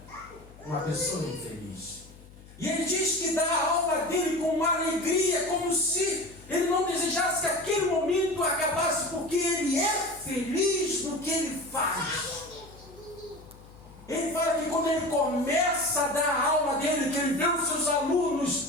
uma pessoa infeliz. E ele diz que dá a alma dele com uma alegria, como se ele não desejasse que aquele momento acabasse, porque ele é feliz no que ele faz. Ele fala que quando ele começa a dar a alma dele, que ele vê os seus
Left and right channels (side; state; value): left; noise; hum, 21 dB below the sound